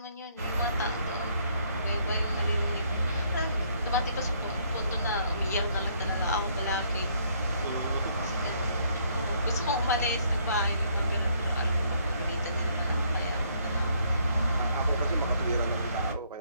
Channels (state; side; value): inverted; both; correlation -0.67